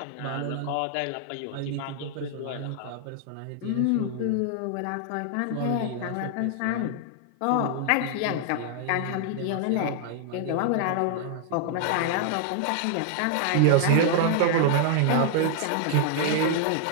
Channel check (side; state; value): both; different; correlation -0.01